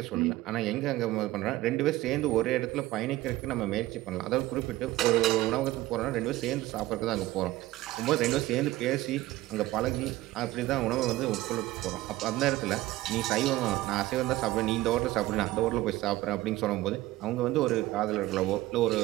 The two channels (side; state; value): left; quieter; 17.2 dB